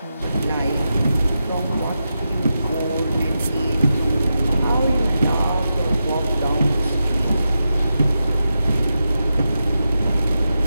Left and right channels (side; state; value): both; inverted; correlation -0.88